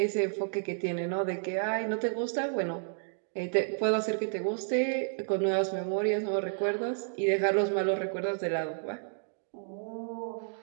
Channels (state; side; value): silent; left; digital silence